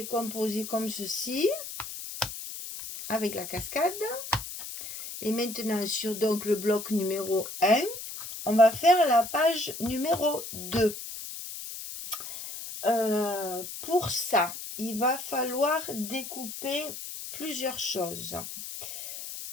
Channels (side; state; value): left; noise; hiss, 9 dB below the sound